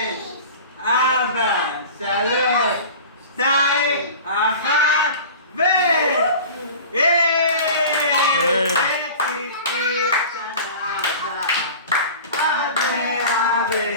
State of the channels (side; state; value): both; inverted; correlation -0.38